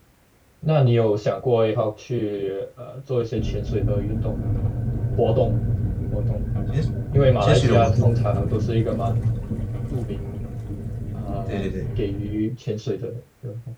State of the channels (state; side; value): identical; both; correlation 1.00